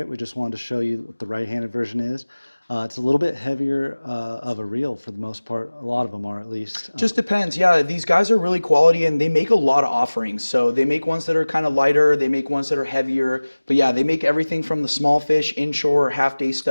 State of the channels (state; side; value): inverted; both; correlation -1.00